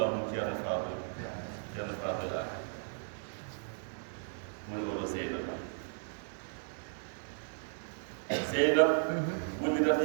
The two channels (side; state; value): left; silent; digital silence